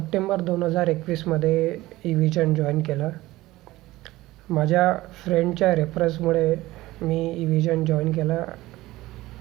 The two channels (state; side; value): quieter; left; 17.8 dB